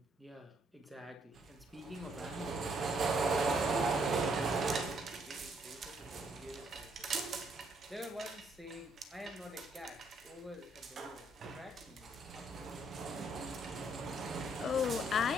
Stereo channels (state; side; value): normal; both; correlation 0.70